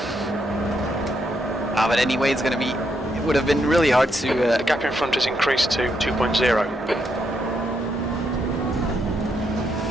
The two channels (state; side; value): normal; both; correlation 0.78